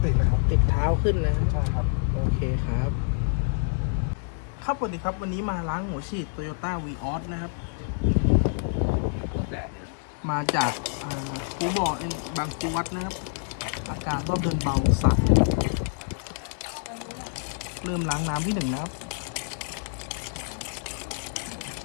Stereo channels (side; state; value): right; silent; digital silence